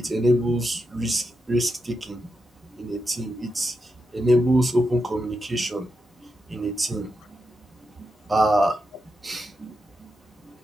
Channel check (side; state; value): both; normal; correlation 0.86